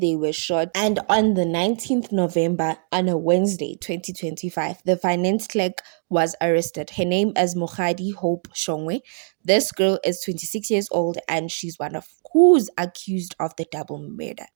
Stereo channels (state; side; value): silent; left; digital silence